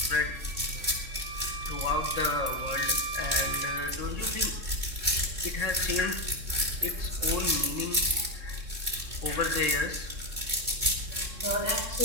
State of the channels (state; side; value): late; left; 3.6 ms